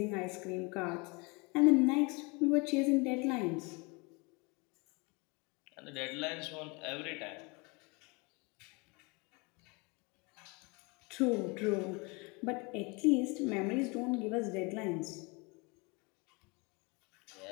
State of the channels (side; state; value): right; quieter; 28.8 dB